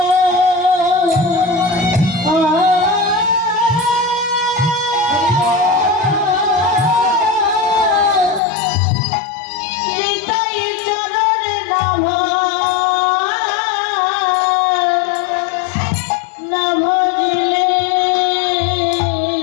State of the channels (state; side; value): drops out; right; at 8.4 s